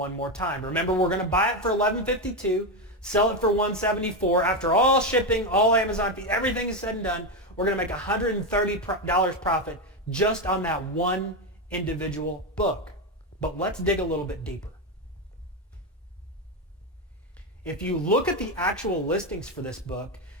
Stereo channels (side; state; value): both; normal; correlation 0.11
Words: more time. Remember, we're going to buy it for $11.52, sell it for $174. After all shipping, all Amazon fees, everything is said and done, we're going to make $130 profit just on that one individual book. But let's dig a little bit deeper. If you look at the actual listings for this book,